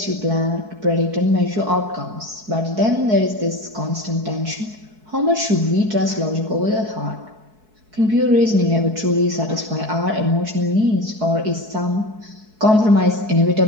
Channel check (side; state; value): left; late; 4.6 ms